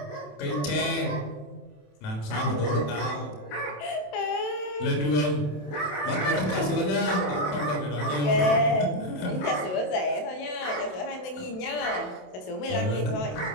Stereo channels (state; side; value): late; right; 27 ms